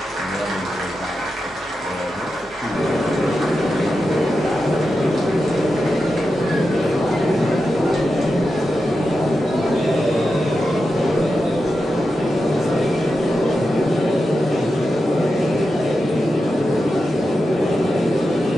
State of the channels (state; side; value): normal; both; correlation 0.89